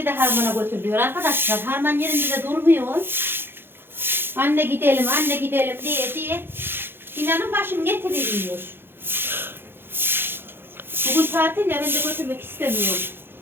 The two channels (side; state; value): left; late; 0.10 ms